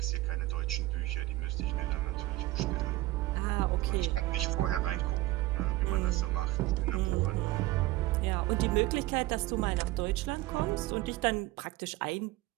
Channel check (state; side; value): quieter; left; 18.3 dB